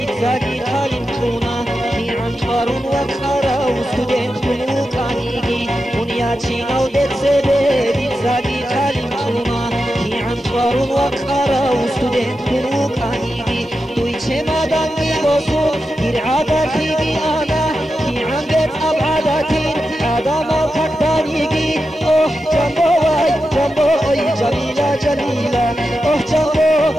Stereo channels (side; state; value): both; normal; correlation 0.89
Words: خاڵیم چوونە هیعان چوارون وەک خارە و سودێن کولوکانیگی دنیا چینە و دێتسێبێ دیزاری خاڵیم چوونە هیعان چوارون وەک خارە و سودێن کولوکانیگی دوی چێمادانگی بۆسو گیرعاداتیگی ئانا هیعان بێت ئەبعاداتین ئادامە کەکدانیگی ئۆح جەمبۆ وای جەمبۆ ئۆی جەمیلە جەمیلە ئۆح جەمبۆ